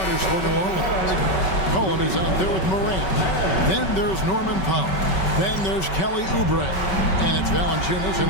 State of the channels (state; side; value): late; right; 5.3 ms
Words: for New Orleans. Cohen is out there with Morant. Then there's Norman Powell. Then there's Kelly Oubre. And it's Valanciunas